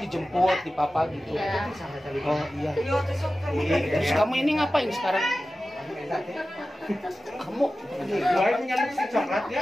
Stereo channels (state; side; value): normal; both; correlation 0.95